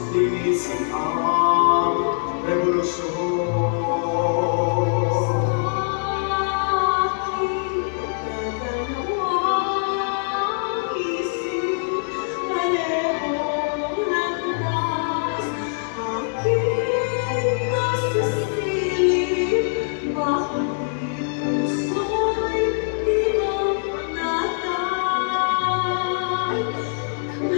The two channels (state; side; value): silent; right; digital silence